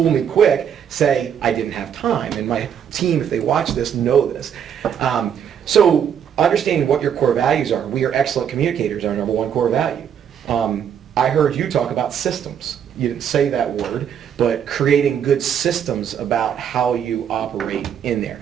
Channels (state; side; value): quieter; left; 8.5 dB